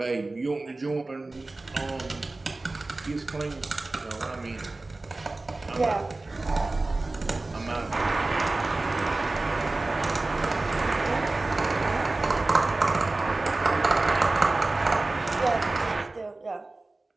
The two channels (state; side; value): quieter; left; 3.2 dB